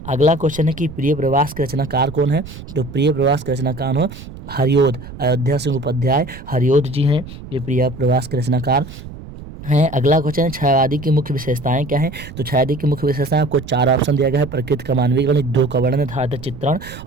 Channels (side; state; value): right; noise; rumble, 14 dB below the sound